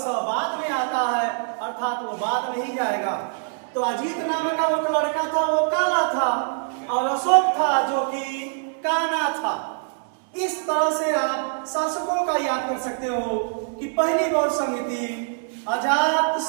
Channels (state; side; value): silent; left; 63 dB below the other